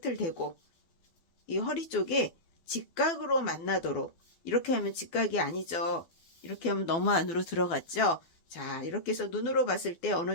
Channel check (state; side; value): late; right; 12 ms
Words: 대고 이 허리 쪽에 직각으로 만나도록, 이렇게 하면 직각이 아니죠. 이렇게 하면 너무 안으로 들어갔죠. 자, 이렇게 해서 눈으로 봤을 때 어느